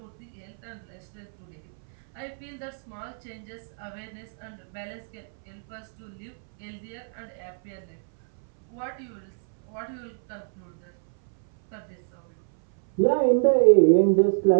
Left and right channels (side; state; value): left; silent; 60 dB below the other